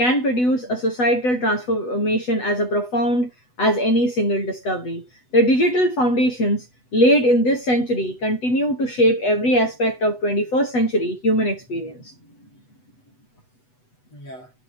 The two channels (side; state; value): right; late; 8.1 ms